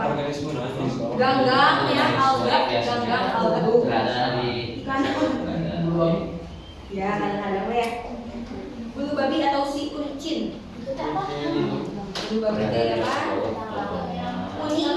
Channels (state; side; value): identical; both; correlation 1.00